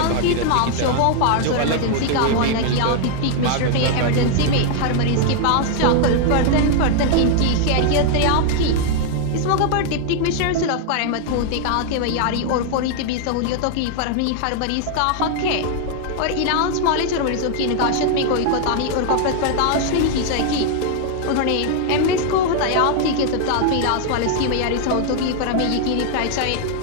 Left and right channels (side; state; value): both; different; correlation 0.00